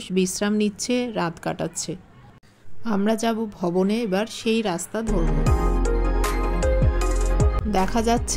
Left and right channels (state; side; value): identical; both; correlation 1.00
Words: বিশ্রাম নিচ্ছে, রাত কাটাচ্ছে। আমরা যাব ভবনে, এবার সেই রাস্তা ধরব। দেখা